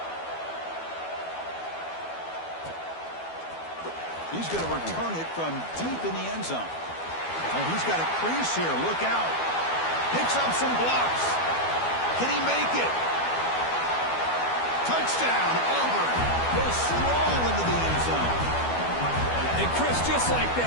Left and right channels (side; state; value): right; late; 12 ms